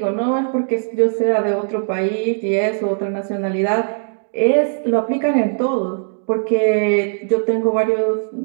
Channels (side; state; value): left; silent; digital silence